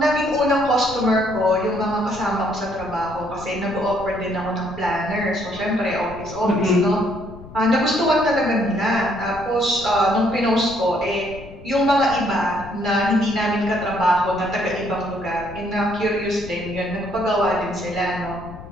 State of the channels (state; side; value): noise; left; rumble, 16 dB below the sound